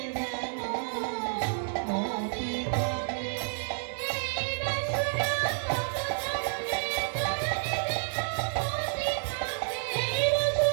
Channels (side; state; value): left; silent; digital silence